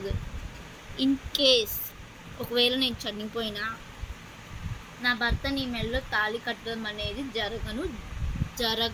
ఇన్ కేస్ ఒకవేళ నేను చనిపోయినా నా భర్త నీ మెల్లో తాళి కట్టడం అనేది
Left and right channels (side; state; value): both; identical; correlation 1.00